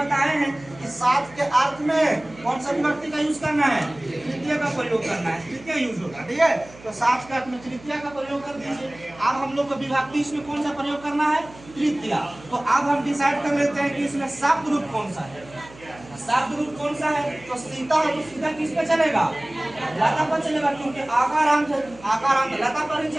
हैं कि साथ के अर्थ में कौन सा विभक्ति का यूज करना है, तृतीय का प्रयोग करना है, तृतीय यूज होगा, ठीक है। तो साथ के अर्थ में तृतीय का प्रयोग कर दीजिए। अब हम लोग को विभक्ति इसमें कौन सा प्रयोग करना है, तृतीय। तो अब हम डिसाइड कर लेते हैं कि इसमें शब्द रूप कौन सा है, शब्द रूप कौन सा है, तो सीता है, तो सीता किस पे चलेगा, लता पर चलेगा, क्योंकि आकारांत है, आकारांत लता पर ही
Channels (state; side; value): noise; right; hum, 21 dB below the sound